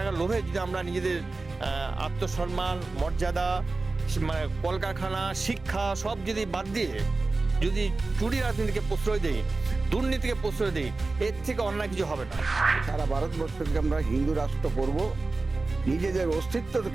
লোভে যদি আমরা নিজেদের আত্মসম্মান, মর্যাদা, মানে কলকারখানা, শিক্ষা সব যদি বাদ দিয়ে যদি চুরি রাজনীতিকে প্রশ্রয় দেই, দুর্নীতিকে প্রশ্রয় দেই, এর থেকে অন্যায় কিছু হবে না। সারা ভারতবর্ষকে আমরা হিন্দু রাষ্ট্র করব নিজেদের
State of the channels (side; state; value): left; quieter; 3.5 dB